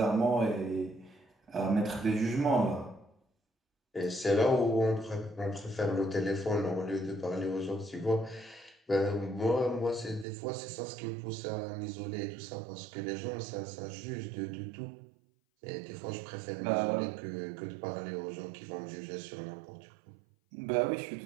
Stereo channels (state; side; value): drops out; left; at 10.2 s